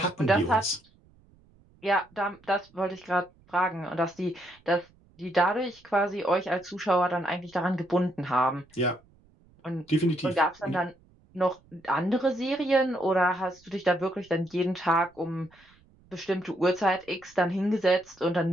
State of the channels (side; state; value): right; noise; rumble, 30 dB below the sound